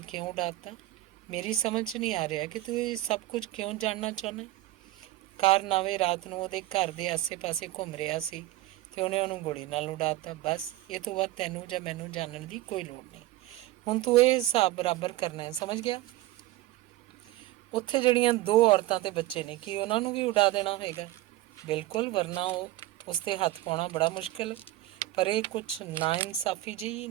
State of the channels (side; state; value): left; quieter; 16.7 dB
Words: ਕਿਉਂ ਉਡਾ ਦਿੱਤਾ? ਮੇਰੀ ਸਮਝ 'ਚ ਨਹੀਂ ਆ ਰਿਹਾ ਕਿ ਤੂੰ ਇਹ ਸਭ ਕੁਝ ਕਿਉਂ ਜਾਣਨਾ ਚਾਹੁੰਦਾ। ਕਾਰਨਾਵੇ ਰਾਤ ਨੂੰ ਉਹਦੇ ਘਰ ਦੇ ਆਸੇ-ਪਾਸੇ ਘੁੰਮ ਰਿਹਾ ਸੀ ਅਤੇ ਉਹਨੇ ਉਹਨੂੰ ਗੋਲੀ ਨਾਲ ਉਡਾ ਦਿੱਤਾ। ਬਸ ਇਹ ਤੋਂ ਬਾਅਦ ਤੈਨੂੰ ਜਾਂ ਮੈਨੂੰ ਜਾਣਨ ਦੀ ਕੋਈ ਲੋੜ ਨਹੀਂ। ਹੁਣ ਤੂੰ ਇਹ ਹਿਸਾਬ ਬਰਾਬਰ ਕਰਨਾ ਹੈ, ਸਮਝ ਗਿਆ। ਉੱਥੇ ਜਿਹੜੀਆਂ 2 ਔਰਤਾਂ ਅਤੇ ਬੱਚੇ ਨੇ, ਕੀ ਉਹਨਾਂ ਨੂੰ ਵੀ ਉਡਾ ਦੇਣਾ ਹੋਏਗਾ? ਬਿਲਕੁਲ, ਵਰਨਾ ਉਸ 'ਤੇ ਹੱਥ ਪਾਉਣਾ ਬੜਾ ਮੁਸ਼ਕਿਲ। ਪਰ ਇਹ ਕੁਛ ਨਾਇਨਸਾਫੀ ਜਿਹੀ